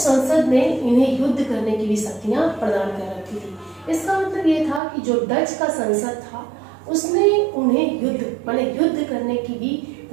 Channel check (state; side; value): drops out; left; at 4.8 s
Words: ने इन्हें युद्ध करने की भी शक्तियां प्रदान कर रखी थी। इसका मतलब ये था कि जो डच का संसद था उसने उन्हें युद्ध करने की भी